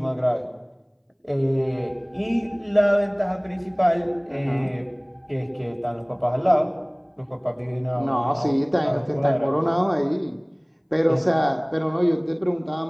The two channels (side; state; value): both; identical; correlation 1.00